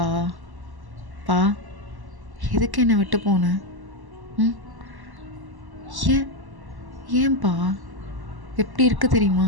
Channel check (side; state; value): left; late; 1.1 ms